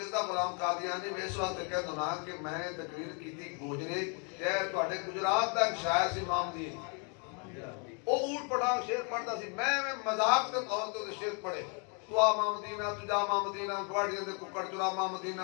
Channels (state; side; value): quieter; right; 36.9 dB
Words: غلام قادیانی میں اس واسطے کہہ دوں کہ میں تقریر کیتی گوجرے شہر تواڈے گجرات دا ایک شاعر سی امام دی او اونٹ پڑھا شعر پڑھدا سی میں مذاق دے طور تے شعر پڑھے تو ماں مدینہ تجا ماں مدینہ گواڑیاں دے ککڑ چرا ماں